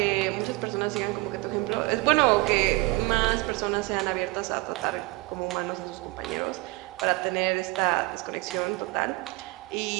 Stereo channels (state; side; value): quieter; left; 23.3 dB